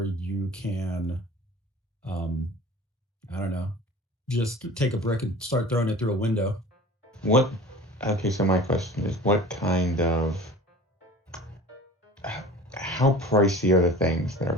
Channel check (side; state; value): both; normal; correlation 0.41